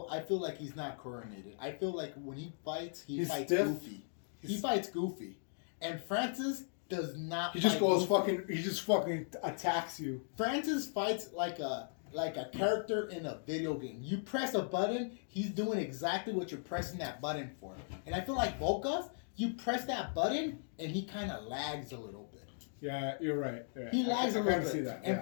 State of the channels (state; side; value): silent; right; digital silence